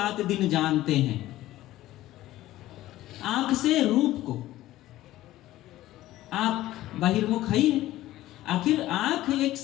दिन जानते हैं। आंख से रूप को, आंख बहिर्मुख है। आखिर आंख एक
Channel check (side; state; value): right; quieter; 15.3 dB